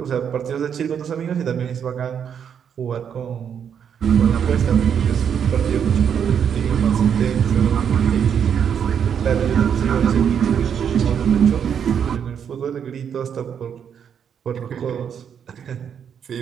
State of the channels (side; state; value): left; quieter; 8.0 dB